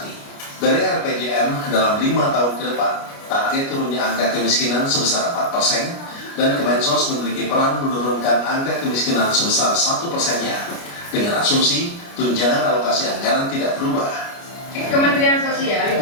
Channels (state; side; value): late; right; 29 ms